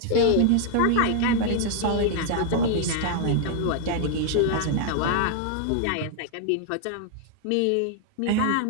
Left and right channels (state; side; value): different; both; correlation 0.00